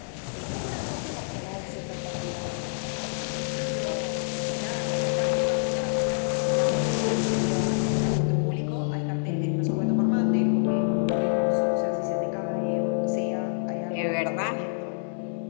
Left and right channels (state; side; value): silent; right; 60 dB below the other